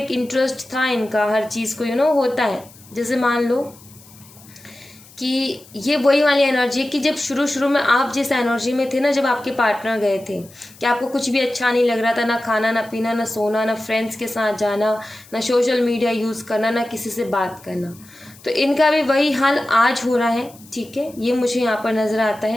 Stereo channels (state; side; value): noise; left; hiss, 23 dB below the sound